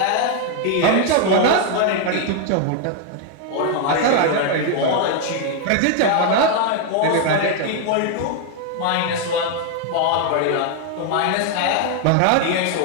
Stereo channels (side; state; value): both; different; correlation 0.01